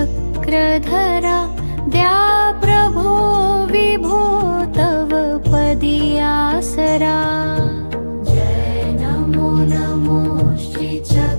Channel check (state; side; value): inverted; both; correlation -1.00